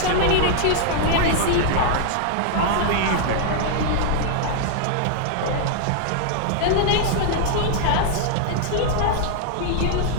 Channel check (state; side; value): different; both; correlation -0.01